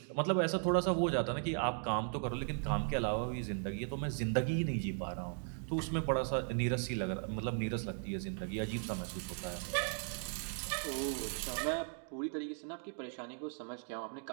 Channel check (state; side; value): silent; left; 53 dB below the other